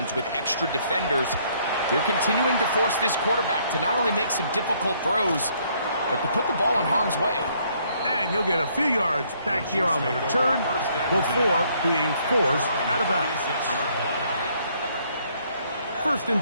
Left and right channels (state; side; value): inverted; both; correlation -0.67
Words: with extra defenders, they're continuing to force this quarterback to not only make some difficult throws, but to put the ball in harm's way. And he'll get a few yards back here on the return before being forced out of bounds. 1st